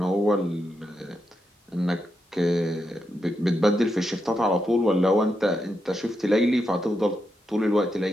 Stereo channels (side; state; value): both; normal; correlation 0.84